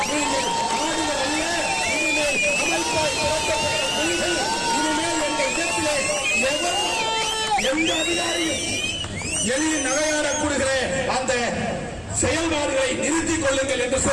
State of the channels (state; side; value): identical; both; correlation 1.00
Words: நீங்கள் எந்த அதிகாரியும் எளிய நகையாடக்கூடிய அந்த செயல்பாடுகளை நிறுத்திக் கொள்ளுங்கள் என்று